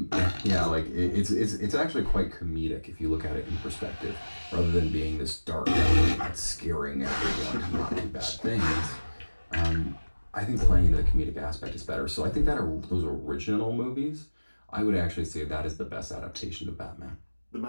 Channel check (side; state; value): both; inverted; correlation -1.00